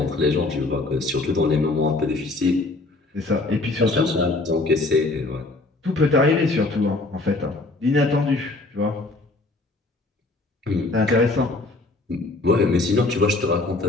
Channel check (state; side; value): quieter; right; 3.1 dB